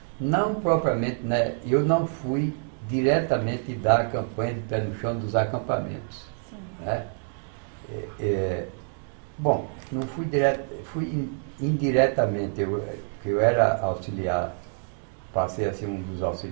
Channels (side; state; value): left; silent; 57 dB below the other